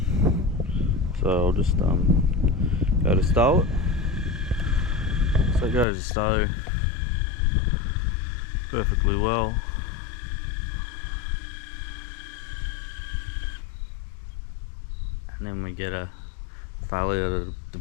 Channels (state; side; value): drops out; right; at 5.9 s